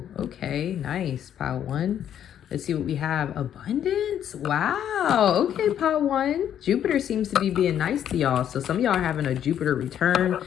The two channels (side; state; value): right; quieter; 9.9 dB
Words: Okay, nice. Pile 1. Let's see what we have. Abundance. Wow. Okay, pile 1. Jupiter seems to be being nice to y'all. So some of y'all are having a Jupiter return.